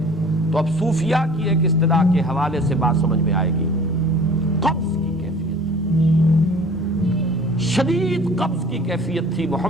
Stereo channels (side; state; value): both; normal; correlation 0.46